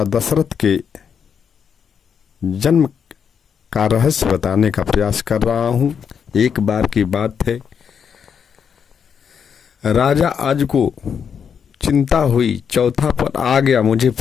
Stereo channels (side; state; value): right; quieter; 7.2 dB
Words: दशरथ के जन्म का रहस्य बताने का प्रयास कर रहा हूँ। एक बार की बात है, राजा आज को चिंता हुई, चौथा पद आ गया, मुझे